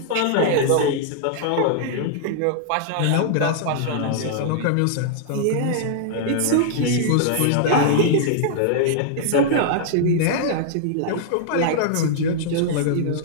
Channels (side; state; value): both; different; correlation -0.01